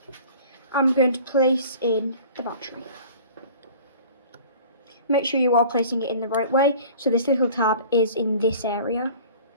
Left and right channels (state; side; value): inverted; both; correlation -0.45